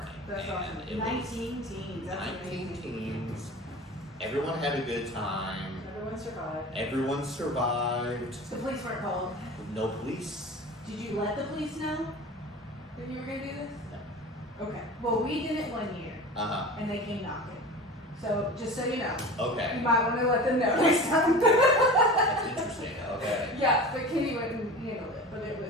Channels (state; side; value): normal; both; correlation 0.34